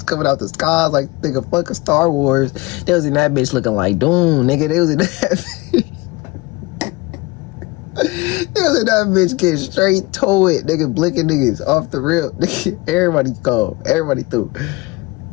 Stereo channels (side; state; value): right; quieter; 22.0 dB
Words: coming out the skies like nigga fucking Star Wars. They was in that bitch looking like Doom, nigga. They was in that bitch. They was in that bitch getting straight to it, nigga, blinking niggas off the rip. Everybody go. Everybody through.